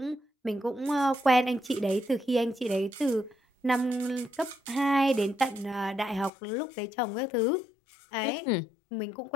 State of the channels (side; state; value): right; drops out; at 6.3 s